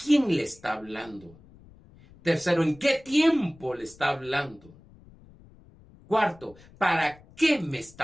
le está hablando? Tercero, ¿en qué tiempo le está hablando? Cuarto, ¿para qué me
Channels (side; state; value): left; noise; rumble, 24 dB below the sound